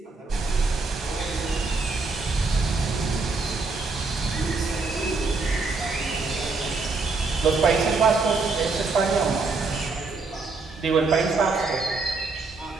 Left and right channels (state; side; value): quieter; left; 4.0 dB